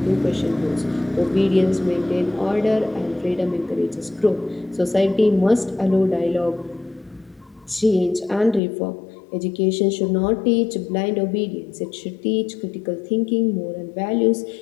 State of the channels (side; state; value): right; drops out; at 8.6 s